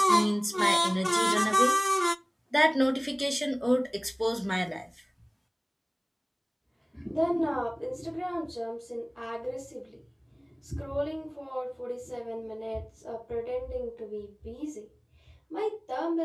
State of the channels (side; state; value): both; identical; correlation 1.00